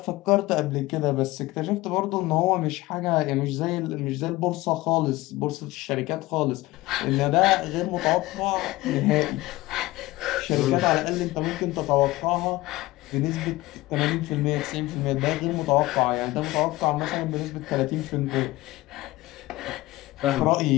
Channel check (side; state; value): right; quieter; 19.0 dB